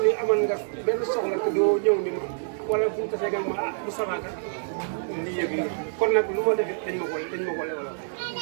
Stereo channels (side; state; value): left; silent; digital silence